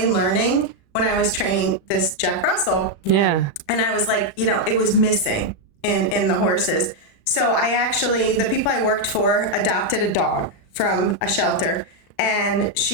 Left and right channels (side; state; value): right; late; 36 ms